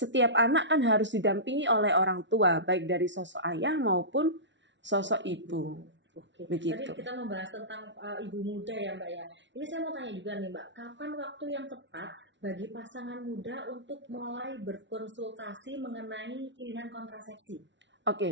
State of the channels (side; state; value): left; late; 0.53 ms